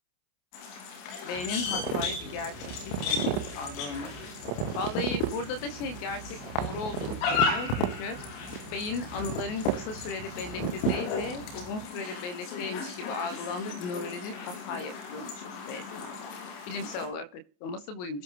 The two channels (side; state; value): right; late; 28 ms